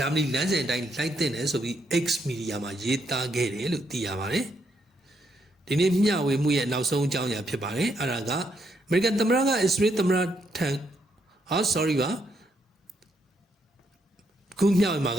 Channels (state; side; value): normal; both; correlation 0.76